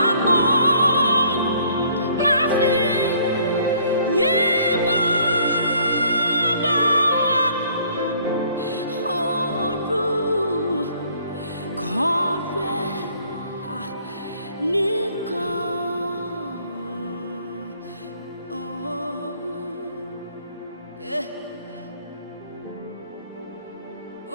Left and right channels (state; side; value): inverted; both; correlation -0.59